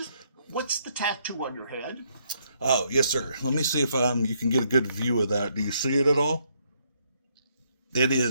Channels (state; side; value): inverted; both; correlation -0.72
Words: What's the tattoo on your head? Oh, yes, sir. Let me see if you can get a good view of that. Do you see it at all? It